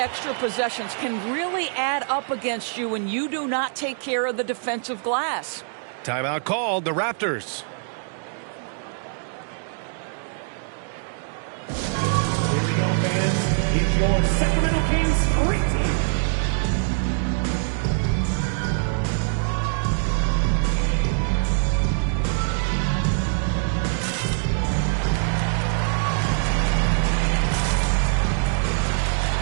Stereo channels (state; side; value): silent; left; digital silence